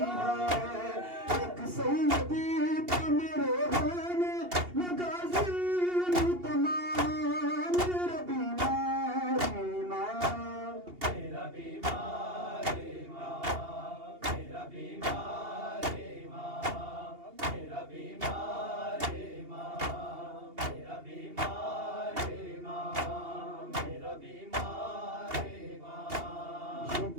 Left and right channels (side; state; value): left; late; 2.8 ms